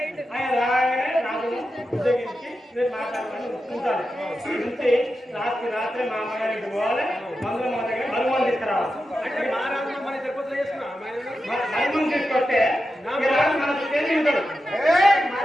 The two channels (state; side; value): normal; both; correlation 0.90